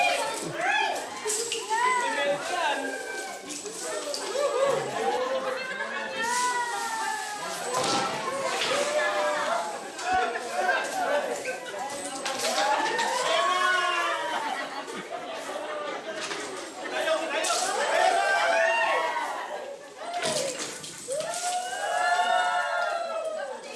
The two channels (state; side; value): identical; both; correlation 1.00